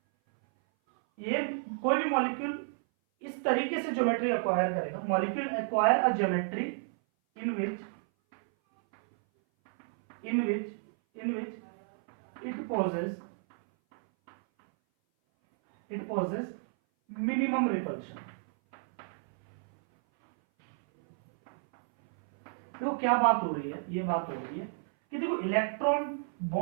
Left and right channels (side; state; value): left; silent; 57 dB below the other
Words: ये कोई भी मॉलिक्यूल इस तरीके से ज्योमेट्री एक्वायर करेगा, molecule acquire a geometry in which it possesses minimum repulsion। तो क्या बात हो रही है, ये बात हो रही है कि देखो इलेक्ट्रॉन